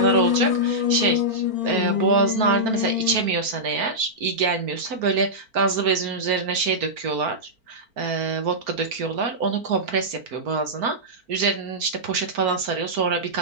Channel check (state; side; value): late; left; 4.4 ms